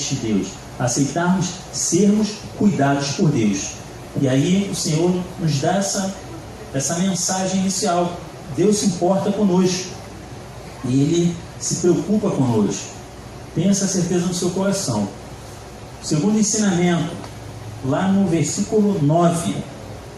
de Deus, aceitarmos sermos cuidados por Deus. E aí o Senhor nos dá essa mensagem inicial. Deus se importa conosco e Ele se preocupa conosco. Tenha essa certeza no seu coração. O segundo ensinamento, lá no versículo 9.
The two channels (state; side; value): identical; both; correlation 1.00